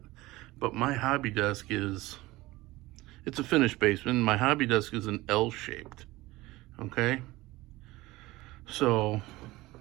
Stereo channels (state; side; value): quieter; left; 19.4 dB